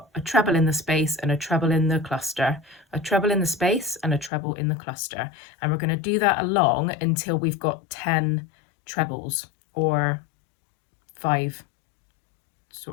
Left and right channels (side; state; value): right; drops out; at 4.3 s